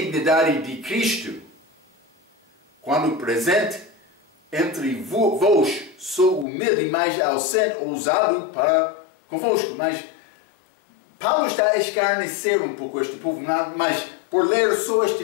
de Cristo, quando presente entre vós, sou humilde, mas ausente, ousado para convosco. Mas Paulo está a escarnecer um pouco este povo, mas por ler só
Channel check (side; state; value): right; drops out; at 6.5 s